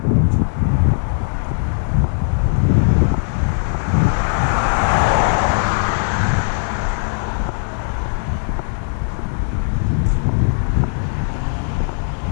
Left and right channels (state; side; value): silent; right; digital silence